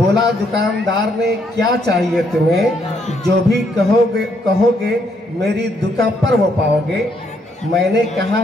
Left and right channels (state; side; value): normal; both; correlation 0.73